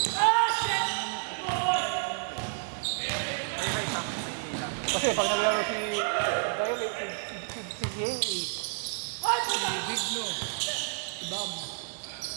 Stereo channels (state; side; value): silent; left; 58 dB below the other